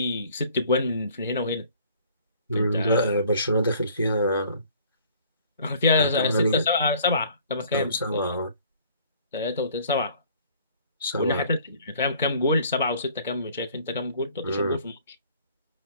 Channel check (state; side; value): inverted; both; correlation -0.54